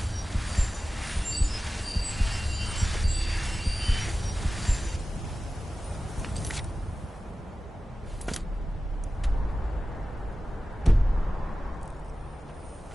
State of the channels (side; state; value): both; normal; correlation 0.95